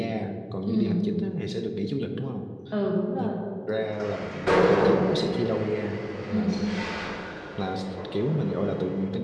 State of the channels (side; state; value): both; identical; correlation 1.00